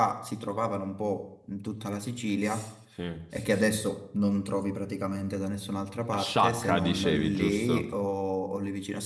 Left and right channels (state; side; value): identical; both; correlation 1.00